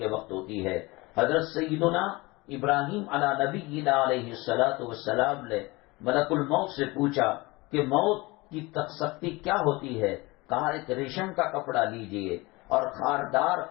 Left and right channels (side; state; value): right; quieter; 23.2 dB